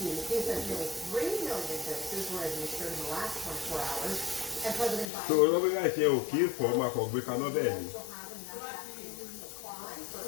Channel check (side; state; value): right; drops out; at 5.1 s